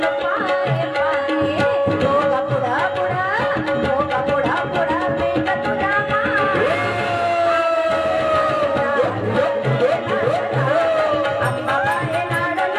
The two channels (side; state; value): both; identical; correlation 1.00